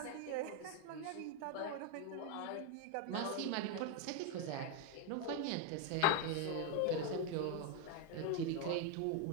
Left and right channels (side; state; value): both; different; correlation 0.01